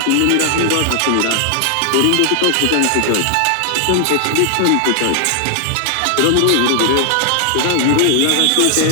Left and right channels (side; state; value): both; different; correlation 0.00